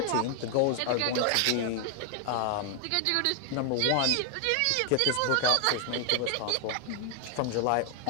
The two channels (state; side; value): different; both; correlation 0.00